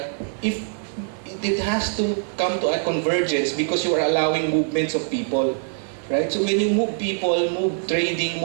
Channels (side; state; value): left; silent; 63 dB below the other